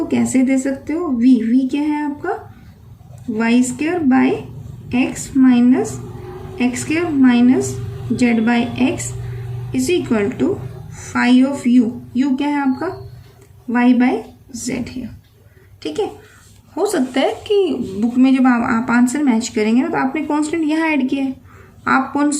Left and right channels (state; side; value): identical; both; correlation 1.00